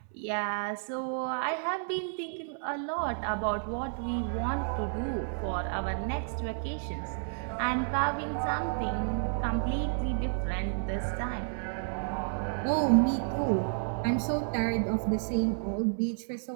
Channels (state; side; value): silent; left; 57 dB below the other